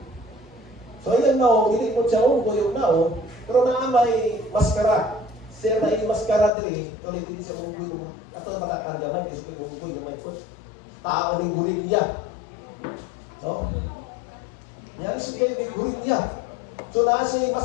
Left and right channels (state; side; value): drops out; right; at 6.5 s